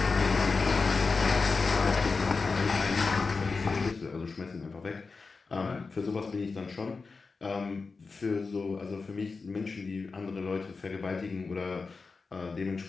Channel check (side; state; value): right; quieter; 4.4 dB